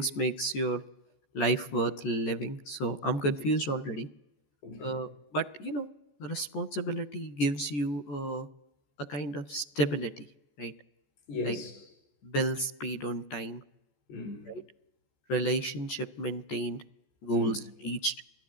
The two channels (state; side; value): late; right; 14 ms